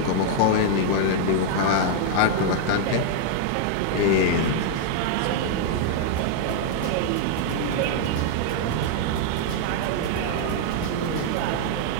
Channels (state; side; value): different; both; correlation -0.01